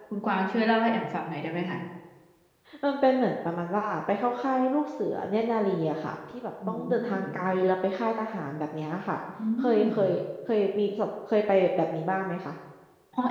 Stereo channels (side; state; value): both; identical; correlation 1.00